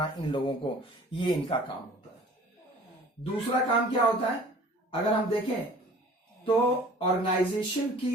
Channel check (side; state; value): both; normal; correlation 0.48